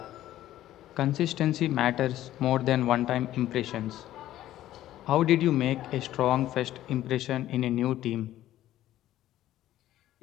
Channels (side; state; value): right; quieter; 13.6 dB